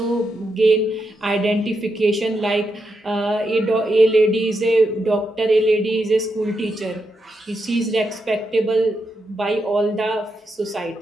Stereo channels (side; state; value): both; normal; correlation 0.84